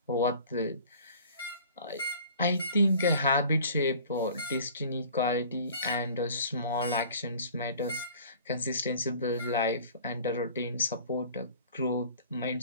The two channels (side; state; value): both; inverted; correlation -0.48